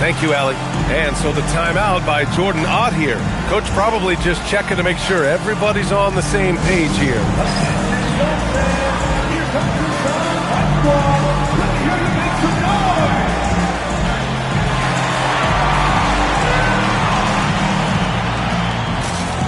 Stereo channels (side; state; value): both; identical; correlation 1.00